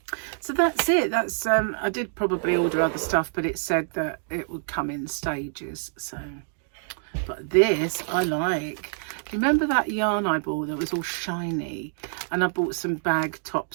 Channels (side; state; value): left; silent; digital silence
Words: So that's it. That's I did probably order other stuff, but it said that it would come in stages. So, but this I like. Do you remember that yarn I bought that was all shiny? And I bought some bag